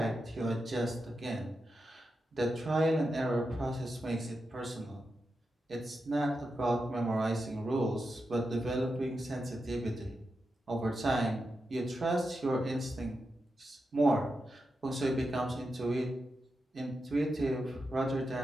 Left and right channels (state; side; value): normal; both; correlation 0.88